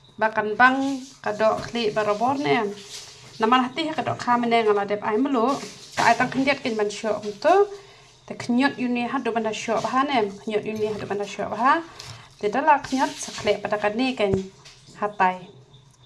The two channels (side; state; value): both; identical; correlation 1.00